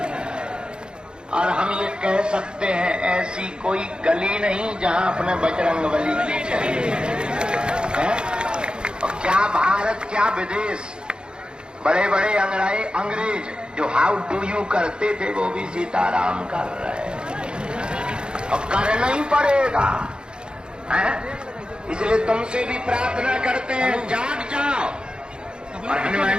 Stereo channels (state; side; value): late; left; 0.050 ms